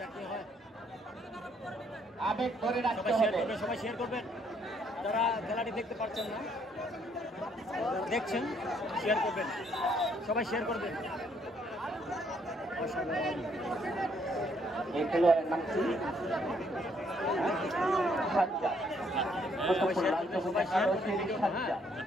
কি হয়। আবেগ ধরে রাখতে সবাই শেয়ার হবে। করবেন, সবাই শেয়ার করবেন। যারা খেলাটি দেখতে পাচ্ছেন না, দেখছেন, শেয়ার করবেন, সবাই শেয়ার করবেন। অসাধারণ এই খেলোয়াড়ের নাম কি? সাজ্জাদ। কুতুবুল লাল সবুজ একাদশের সাজ্জাদ।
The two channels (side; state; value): both; normal; correlation 0.69